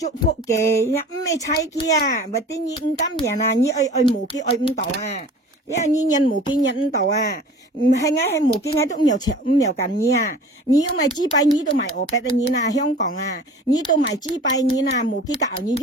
福嘅，唔係猜佢啊，咪啲你唔今年啊，你愛冇機愛唔到啊，因為你人冇機人唔到啊，唔係係冇機係都唔有錢唔有緊你啊，你要買幾百你都買俄幣嘅你啦，香港啊，你都買幾百你啦，冇機搞你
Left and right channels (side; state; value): both; normal; correlation 0.43